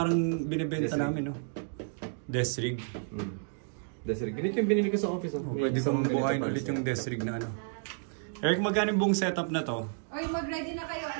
binibenta namin, no? Desk rig. Desk rig. Ganito yung binili ko sa office. Pwede kong buhayin ulit yung desk rig na Eric, magkano yung buong setup na to? Oy, mag-ready na kayo.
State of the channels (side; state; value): left; silent; digital silence